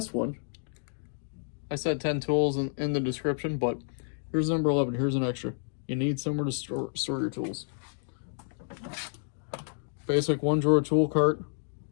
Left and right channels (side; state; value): right; silent; digital silence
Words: one, I said 10 tools in the description, but here's number 11. Here's an extra. You need somewhere to store your tools. Basic 1-drawer tool cart